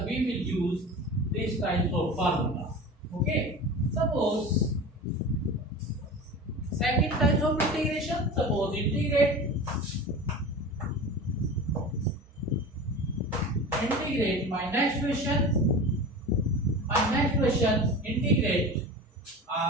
we will use this type of formula. Okay, suppose second type of integration, suppose integrate my next question integrate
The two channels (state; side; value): normal; both; correlation 0.32